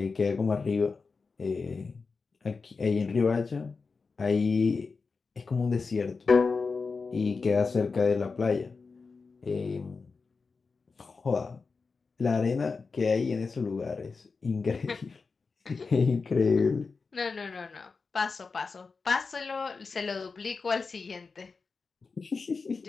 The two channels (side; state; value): right; quieter; 4.6 dB